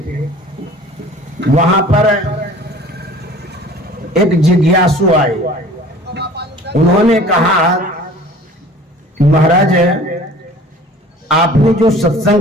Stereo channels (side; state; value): both; normal; correlation 0.46